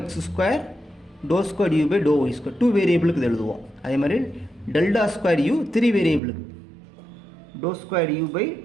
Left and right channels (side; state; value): left; drops out; at 6.2 s